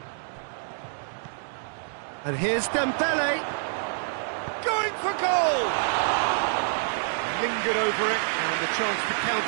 And here's Dembele. Going for goal! Lingered over it, and the chance to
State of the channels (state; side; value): silent; left; digital silence